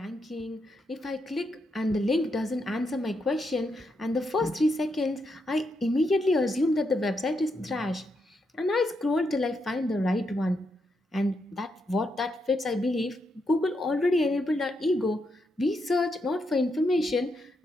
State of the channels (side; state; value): both; normal; correlation 0.81